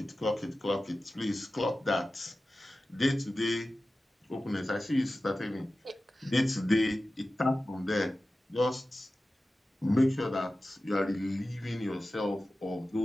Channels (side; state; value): both; normal; correlation 0.95